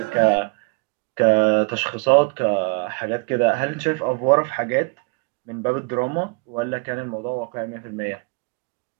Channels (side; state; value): left; quieter; 31.0 dB